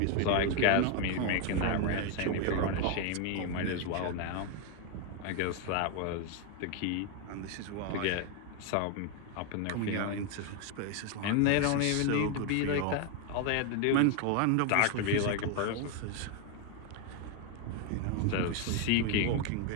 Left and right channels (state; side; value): different; both; correlation 0.01